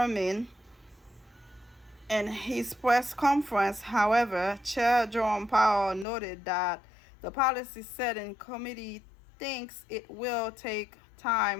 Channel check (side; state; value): right; drops out; at 6.1 s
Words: In his press conference, however, Chair Jerome Powell noted that the policy setting committee thinks it will take